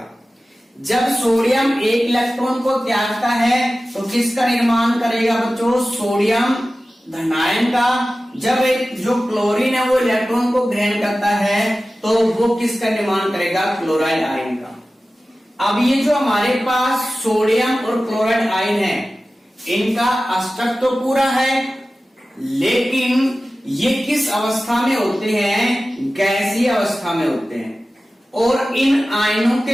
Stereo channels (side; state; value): both; normal; correlation 0.95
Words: जब सोडियम 1 इलेक्ट्रॉन को त्यागता है तो किसका निर्माण करेगा बच्चों? सोडियम धनायन का। जब एक जो क्लोरीन है वो इलेक्ट्रॉन को ग्रहण करता है तो वो किसका निर्माण करेगा? क्लोराइड आयन का। अब ये जो हमारे पास सोडियम और क्लोराइड आयन है इनका अष्टक तो पूरा है, लेकिन ये किस अवस्था में होते हैं? गैसीय अवस्था में होते हैं। और इन आयनों